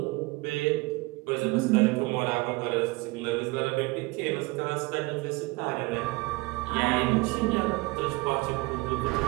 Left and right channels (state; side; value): quieter; left; 23.5 dB